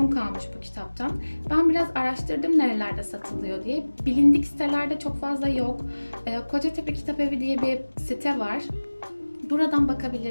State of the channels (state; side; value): inverted; both; correlation -1.00